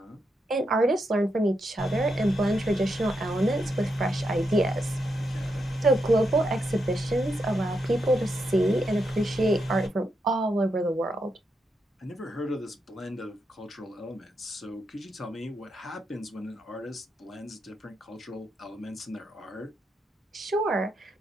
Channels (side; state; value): both; normal; correlation 0.83